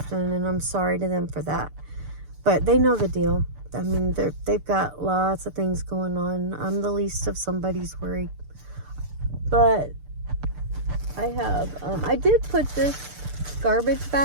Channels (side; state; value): left; late; 6.8 ms